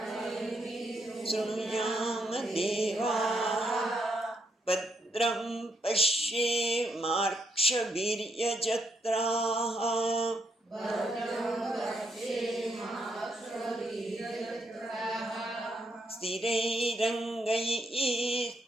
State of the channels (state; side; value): normal; both; correlation 0.78